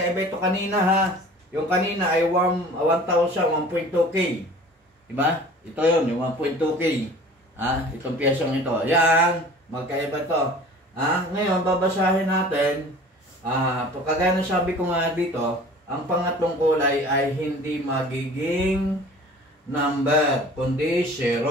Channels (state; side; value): normal; both; correlation 0.45